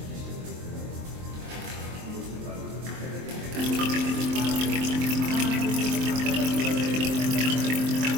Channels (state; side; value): late; left; 23 ms